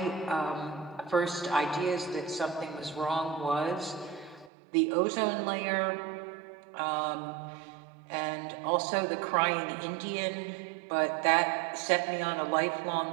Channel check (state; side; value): drops out; left; at 4.5 s